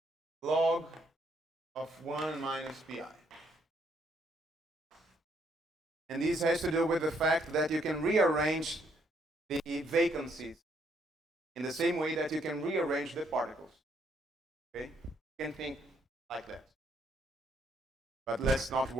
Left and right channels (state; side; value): normal; both; correlation 0.71